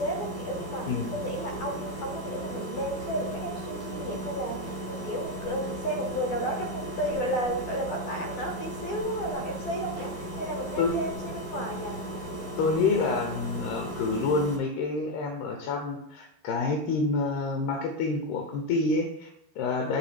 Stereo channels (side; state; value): right; late; 11 ms